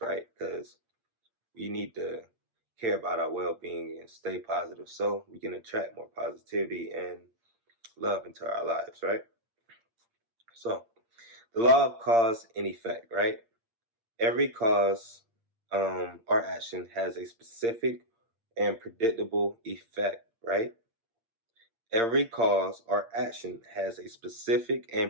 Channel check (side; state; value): left; late; 8.7 ms